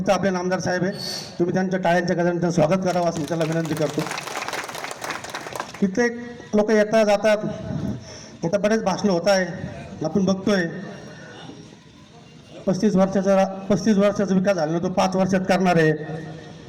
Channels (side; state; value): both; identical; correlation 1.00